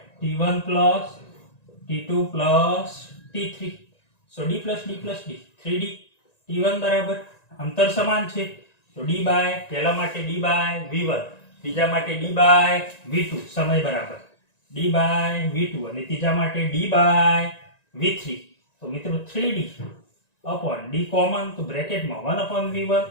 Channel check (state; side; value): late; right; 1.9 ms